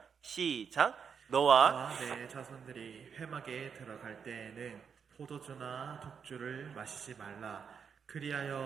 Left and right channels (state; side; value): quieter; left; 6.7 dB